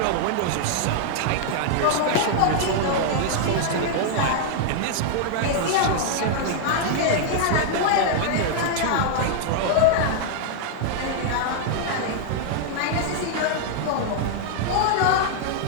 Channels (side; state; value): both; different; correlation -0.01